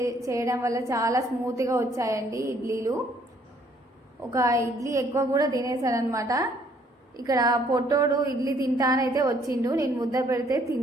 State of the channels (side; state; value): both; normal; correlation 0.64